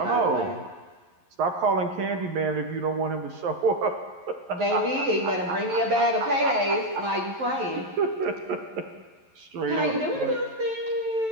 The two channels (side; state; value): left; late; 11 ms